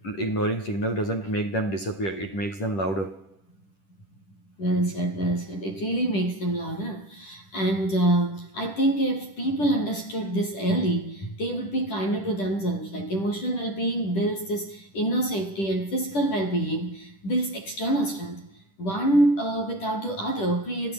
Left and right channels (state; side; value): late; right; 10 ms